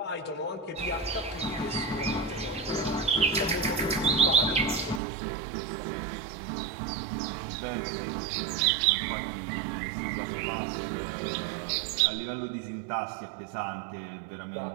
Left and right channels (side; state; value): left; drops out; at 5.0 s